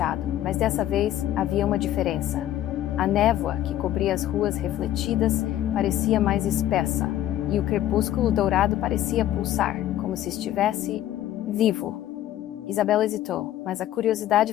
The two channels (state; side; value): quieter; right; 12.8 dB